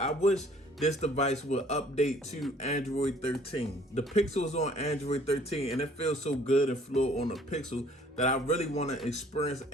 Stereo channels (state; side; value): normal; both; correlation 0.57